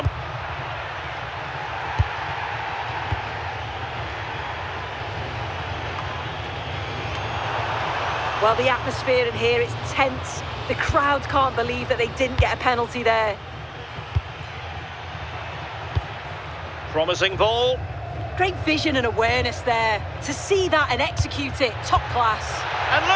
Well, the atmosphere in here is tense. The crowd can't believe that they didn't get a penalty there. Promising ball. Great vision and awareness there. To see that and execute it, top class. And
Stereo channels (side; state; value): both; identical; correlation 1.00